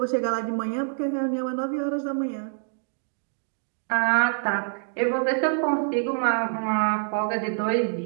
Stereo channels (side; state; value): left; silent; digital silence